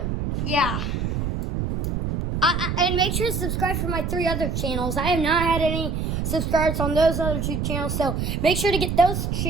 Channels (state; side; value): noise; right; rumble, 1 dB below the sound